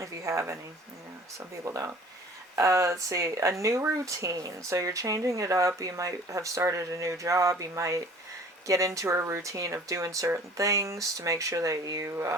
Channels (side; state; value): both; normal; correlation 0.49